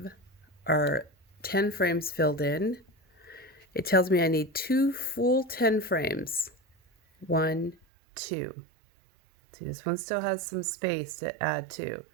our 10 frames filled in. It tells me I need 2 full 10 frames. 1, 2. See, this one still has some space to add to.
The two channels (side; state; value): left; drops out; at 7.9 s